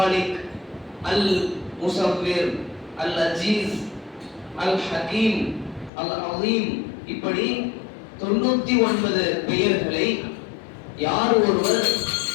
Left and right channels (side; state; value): right; drops out; at 5.9 s